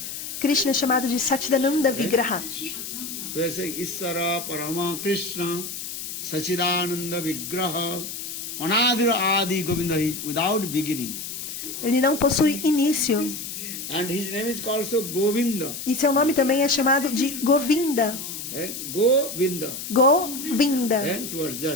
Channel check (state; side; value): noise; left; hiss, 7 dB below the sound